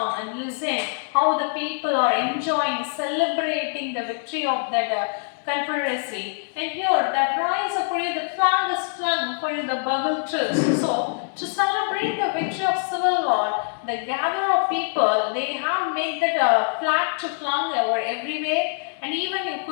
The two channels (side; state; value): right; silent; digital silence